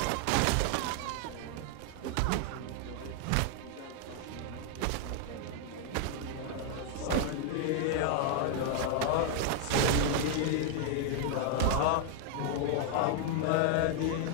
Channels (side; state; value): both; different; correlation 0.00